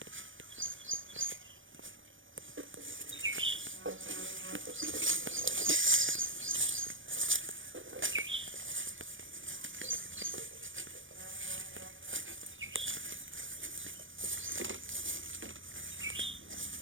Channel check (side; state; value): left; late; 0.56 ms